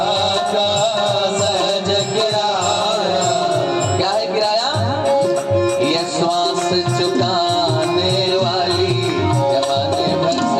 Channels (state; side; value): identical; both; correlation 1.00